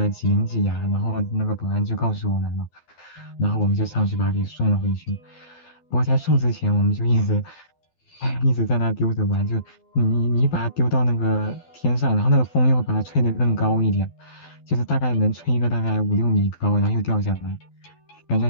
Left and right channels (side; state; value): right; late; 12 ms